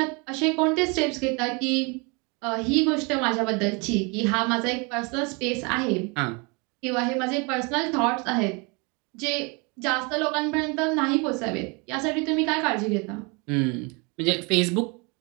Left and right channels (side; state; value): left; quieter; 30.3 dB